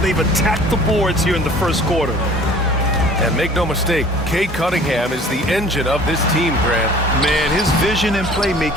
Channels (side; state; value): both; normal; correlation 0.49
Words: attacked the boards here in the first quarter. And make no mistake, Cade Cunningham is the engine of this team, Grant. Man, his vision and